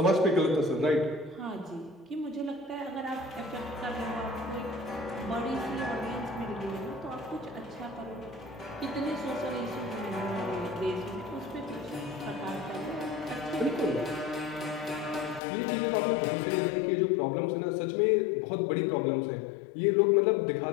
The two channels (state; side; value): drops out; right; at 15.4 s